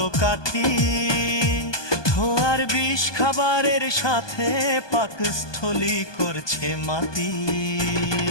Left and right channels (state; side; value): late; right; 1.2 ms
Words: কাঠি? ধোয়ার বিষ খাবারের সাথে পাকস্থলী করছে মাটি।